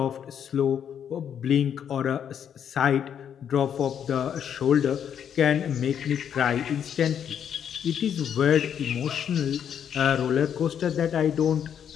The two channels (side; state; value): right; quieter; 8.6 dB